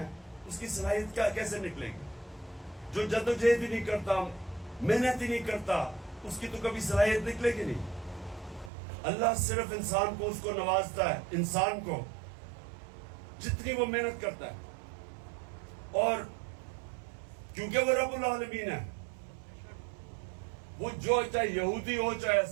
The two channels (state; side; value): drops out; left; at 8.7 s